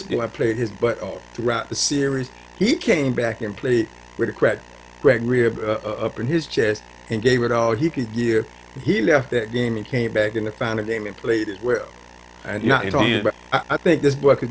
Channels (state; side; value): identical; both; correlation 1.00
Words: Yeah, boy played his butt off throughout the series. He came back and played with a crack rib up in his chest and gave it all he could give. He left that game and came back in the final game and played as well. And yeah, not talking about, I think this boy